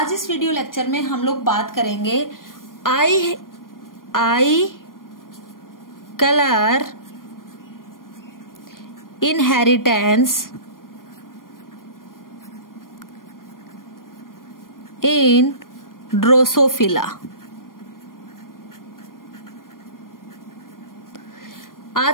इस वीडियो लेक्चर में हम लोग बात करेंगे आई कलर इनहेरिटेंस इन ड्रोसोफिला।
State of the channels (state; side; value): late; right; 0.91 ms